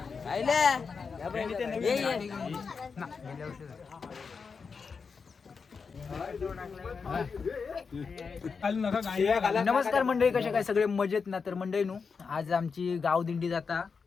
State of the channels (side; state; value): right; quieter; 5.3 dB